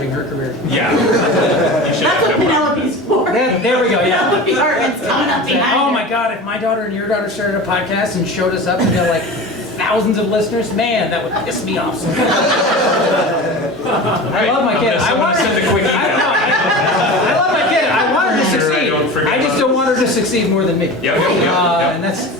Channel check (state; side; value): normal; both; correlation 0.32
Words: her career. Yeah. You should That's what have no problem. Penelope's for. There we go, yeah. Penelope Hartman's coming up behind Oh her. my God, if my daughter and your daughter started a podcast and showed us up and got like thousands of listeners, man, that would piss me off. Right. I love my kid. I'm gonna send a quick email. I love my kid. I want her to Sure, I succeed. don't forget I just about don't want her to succeed more than me. Yep. And